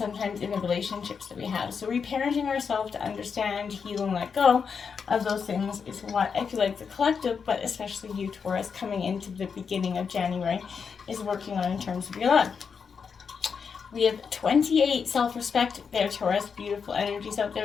in the relationships that we have. So reparenting ourselves to understand, heal, and let go of those things is what I feel like the collective, but especially you, Taurus, coming into the beginning of January, is working on in terms of your love. We have 28 self-respect there, Taurus. Beautiful energies out there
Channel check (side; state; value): right; quieter; 6.1 dB